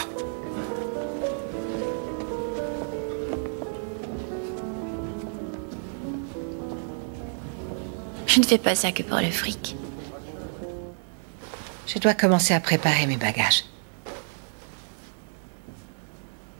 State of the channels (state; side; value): silent; left; 59 dB below the other